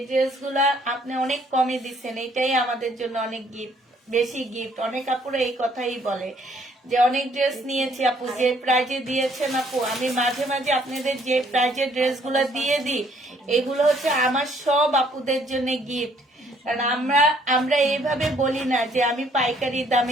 ড্রেসগুলা আপনি অনেক কমে দিচ্ছেন, এটাই আমাদের জন্য অনেক গিফট, বেশি গিফট। অনেক আপুরা এই কথাই বলে যে অনেক ড্রেস নিয়েছি আপু, যে প্রাইজে দিয়েছেন আপু। আমি মাঝে মাঝে আপনাদের যে প্রাইজের ড্রেসগুলো দিয়ে দিই, এগুলো হচ্ছে আমার সব আপুদের জন্য গিফট। কারণ আমরা এইভাবে বলি না যে আমি পাইকারি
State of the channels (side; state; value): both; normal; correlation 0.64